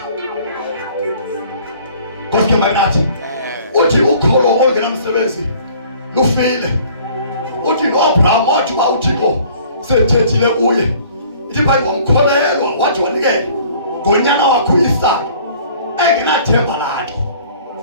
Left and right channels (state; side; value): inverted; both; correlation -0.53